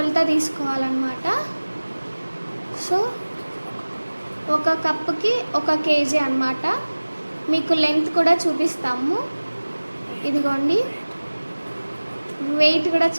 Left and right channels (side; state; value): both; inverted; correlation -1.00